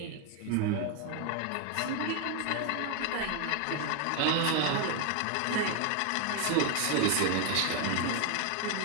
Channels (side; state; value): both; different; correlation 0.01